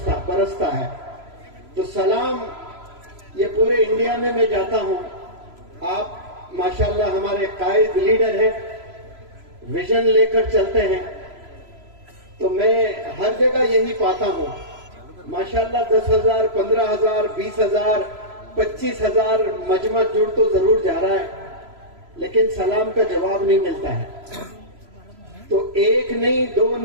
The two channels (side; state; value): left; late; 3.0 ms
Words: برستا ہے۔ تو سلام یہ پورے انڈیا میں جاتا ہوں، آپ ماشاءاللہ ہمارے قائد لیڈر ہیں، ویژن لے کر چلتے ہیں، تو میں ہر جگہ یہی پاتا ہوں۔ ماشاءاللہ 10,000 15,000 20,000 25,000 مجمع جڑ تو ضرور جا رہا ہے، لیکن سلام کا جواب نہیں ملتا ہے۔ تو 1 نہیں 2